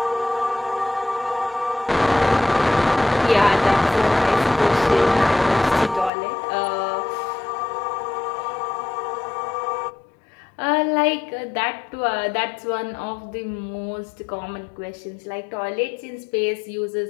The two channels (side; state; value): right; drops out; at 6.1 s